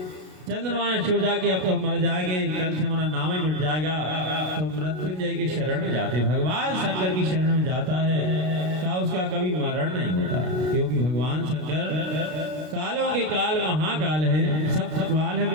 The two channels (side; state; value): left; late; 32 ms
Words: चंद्रमा ने सोचा कि अब तो हम मर जाएंगे, कल से हमारा नाम ही मिट जाएगा। तो मृत्युंजय की शरण में जाते, भगवान शंकर की शरण में जाता है। क्या उसका कभी मरण नहीं होता? क्योंकि भगवान शंकर कालों के काल महाकाल है। सब काल है